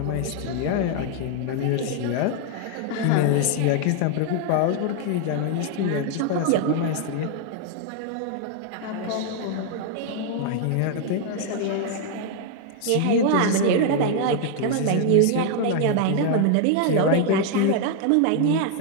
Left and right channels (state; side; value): different; both; correlation 0.00